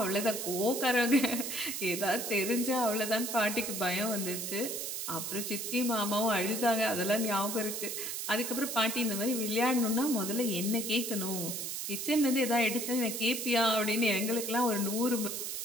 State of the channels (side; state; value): right; noise; hiss, 4 dB below the sound